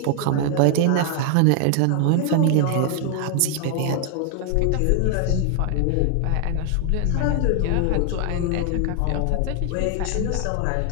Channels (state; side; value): different; both; correlation 0.00